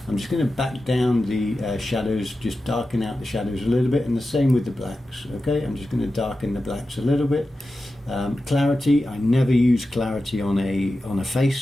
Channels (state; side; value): normal; both; correlation 0.92